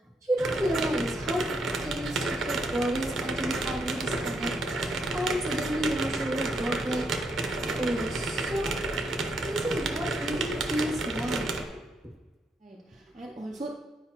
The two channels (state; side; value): normal; both; correlation 0.76